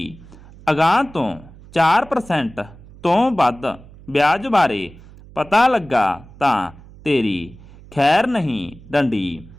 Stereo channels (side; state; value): right; noise; hum, 21 dB below the sound